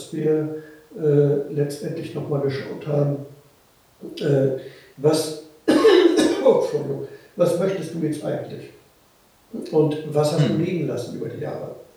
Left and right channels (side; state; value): both; identical; correlation 1.00